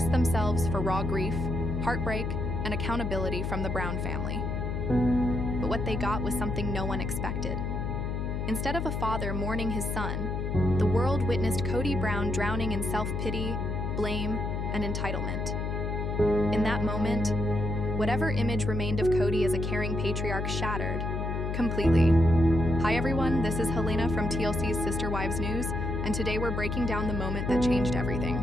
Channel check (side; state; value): left; noise; hum, 2 dB below the sound